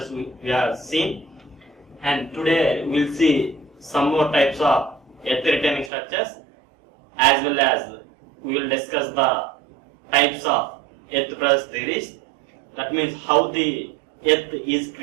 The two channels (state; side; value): drops out; left; at 5.9 s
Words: we have seen. And today we will see some more types of earth retaining structures, as well as we will discuss the types of earth pressure theories. That means how the earth is